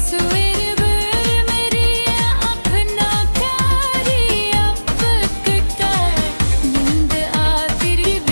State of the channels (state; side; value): inverted; both; correlation -1.00